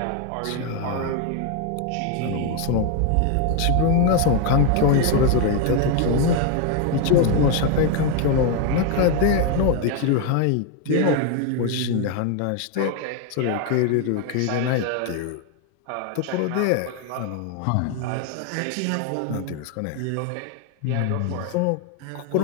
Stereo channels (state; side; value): different; both; correlation 0.01